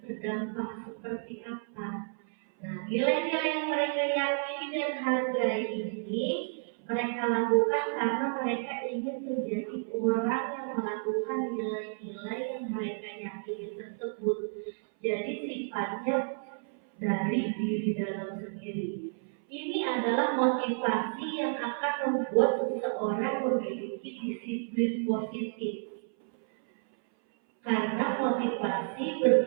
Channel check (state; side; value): silent; left; 57 dB below the other